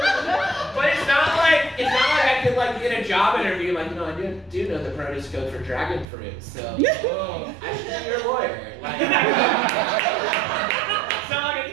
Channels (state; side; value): drops out; left; at 6.1 s